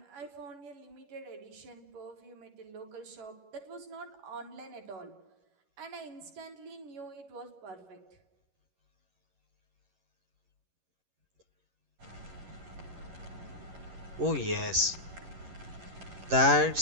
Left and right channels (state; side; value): late; left; 11 ms